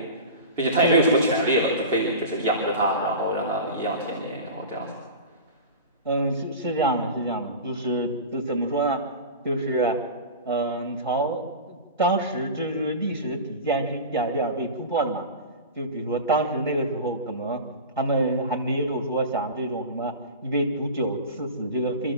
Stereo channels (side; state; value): both; inverted; correlation -0.30